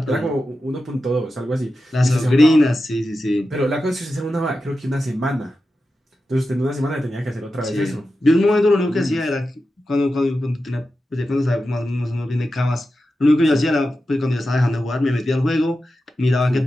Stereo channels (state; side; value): normal; both; correlation 0.91